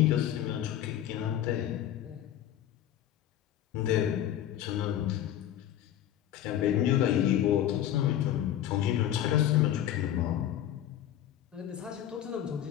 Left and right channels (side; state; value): right; quieter; 11.5 dB